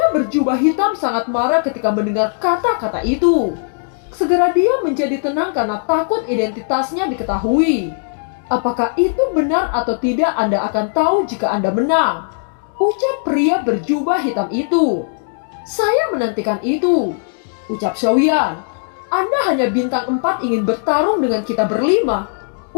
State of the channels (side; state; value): right; silent; digital silence